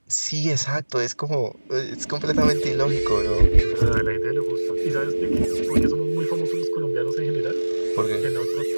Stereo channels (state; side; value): inverted; both; correlation -1.00